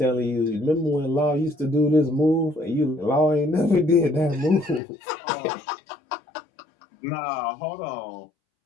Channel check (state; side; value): drops out; right; at 4.8 s